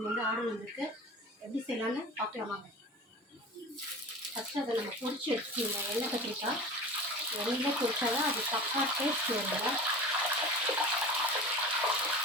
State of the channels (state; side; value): normal; both; correlation 0.34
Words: ஆர்டர் வந்திருக்கு. எப்படி செய்யலான்னு பார்க்கலாமாங்க. ஃபஸ்ட்டு அதை நம்ம பொரிச்சு வச்சுக்கோங்க. எண்ணெய் கத்திரிக்காய் எண்ணெயில் பொரிச்சா தான் அது தப்பாக டேஸ்ட் வருங்க.